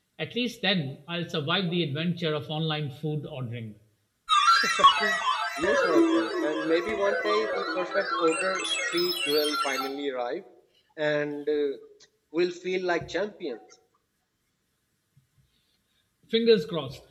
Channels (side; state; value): both; identical; correlation 1.00